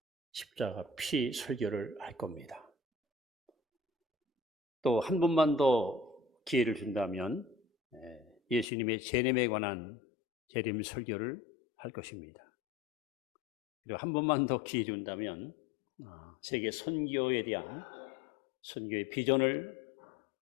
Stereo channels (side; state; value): right; drops out; at 8.7 s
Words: 설교를 할 겁니다. 또 한 번만 더 기회를 준다면 예수님의 재림에 관한 재림 설교를 할 것입니다. 그리고 한 번만 더 기회 준다면 세계 선교에 대한 선교의 비전을